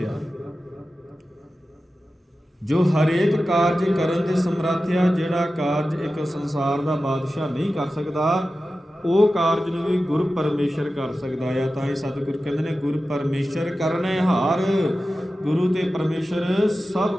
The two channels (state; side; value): normal; both; correlation 0.94